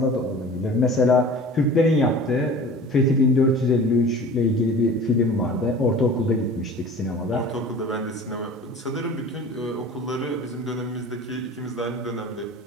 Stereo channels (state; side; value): normal; both; correlation 0.41